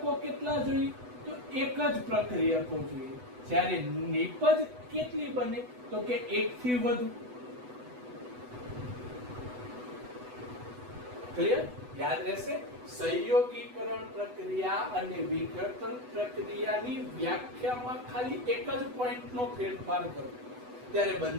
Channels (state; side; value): late; left; 8.1 ms